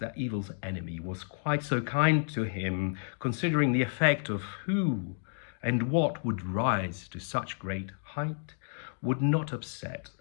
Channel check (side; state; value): right; silent; digital silence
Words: evil's enemy was quite so kind to him, considering the effect of who and what would rise to such great height, would not upset